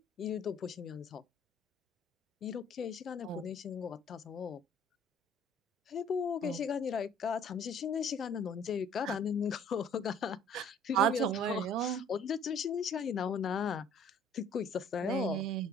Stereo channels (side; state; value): both; normal; correlation 0.54